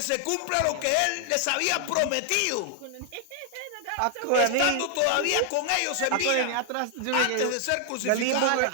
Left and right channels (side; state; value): both; different; correlation 0.00